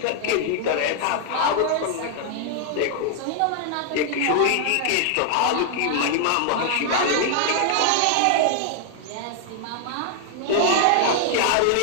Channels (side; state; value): both; different; correlation 0.00